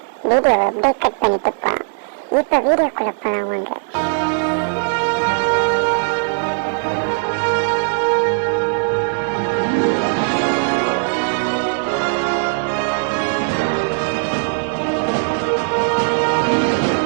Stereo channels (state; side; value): silent; left; 67 dB below the other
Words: வீடியோவை அப்படியே கட் பண்ணிட்டு போகலாம். இப்போ வீடியோக்குள்ள போகலாம் வாங்க.